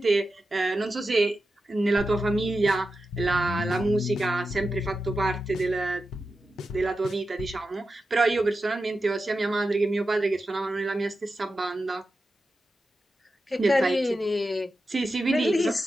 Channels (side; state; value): both; normal; correlation 0.91